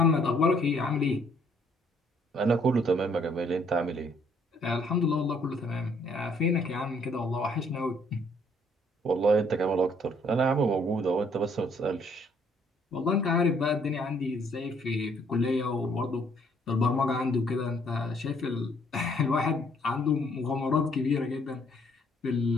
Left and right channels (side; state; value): both; normal; correlation 0.65